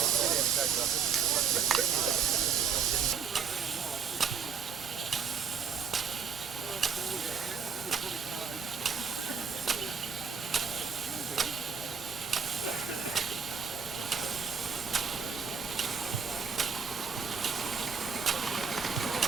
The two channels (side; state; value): left; quieter; 6.3 dB